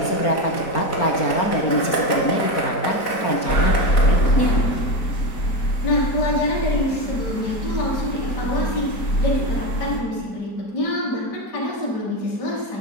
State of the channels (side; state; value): right; late; 4.4 ms